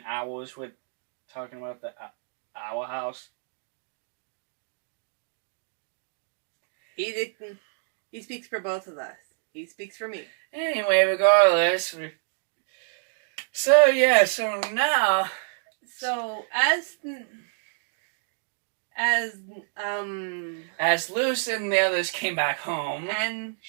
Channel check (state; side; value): silent; left; digital silence